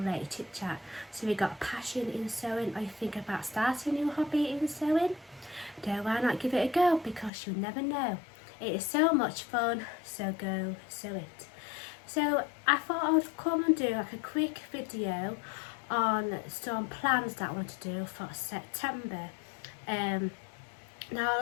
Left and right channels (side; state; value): right; drops out; at 7.3 s